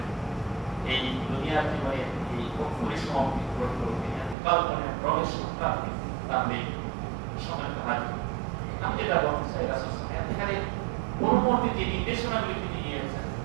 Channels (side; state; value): left; drops out; at 4.4 s